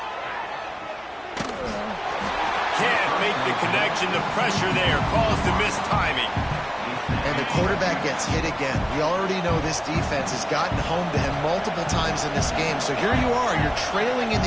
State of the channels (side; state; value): both; identical; correlation 1.00